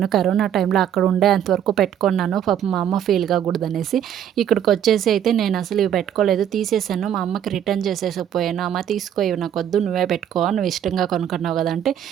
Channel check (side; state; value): left; quieter; 9.8 dB